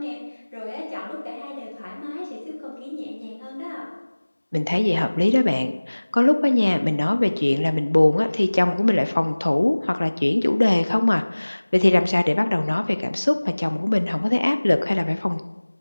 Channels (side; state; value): both; inverted; correlation -1.00